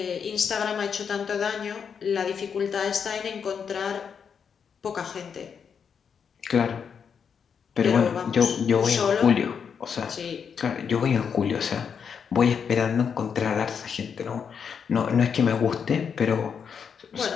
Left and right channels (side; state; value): right; quieter; 6.8 dB